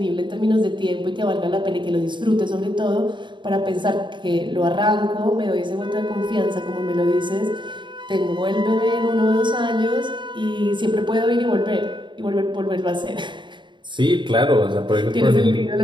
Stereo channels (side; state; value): left; late; 0.23 ms